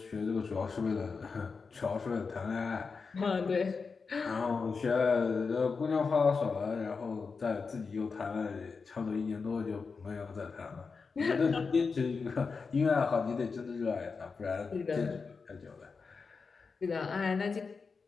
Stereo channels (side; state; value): right; quieter; 4.9 dB